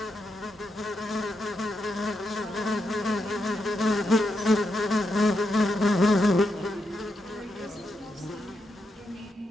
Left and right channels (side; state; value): both; normal; correlation 0.83